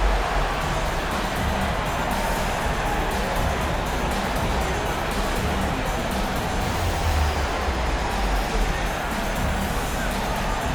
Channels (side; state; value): both; identical; correlation 1.00